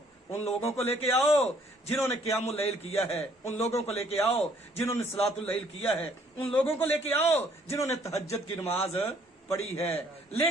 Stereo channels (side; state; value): both; normal; correlation 0.63